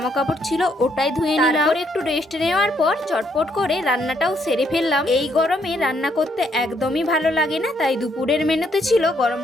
কাপড় ছিল ওটাই ধুয়ে নিলাম, তারপর একটু রেস্ট নেওয়ার পর চটপট করে রান্নাটাও সেরে ফেললাম। এই গরমে রান্না করতে একদমই ভালো লাগে না, তাই দুপুরের মেনুতে ছিল গরম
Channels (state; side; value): normal; both; correlation 0.72